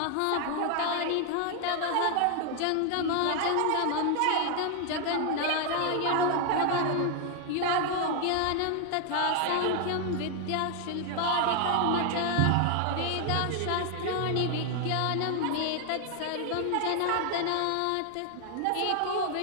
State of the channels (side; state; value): both; different; correlation 0.00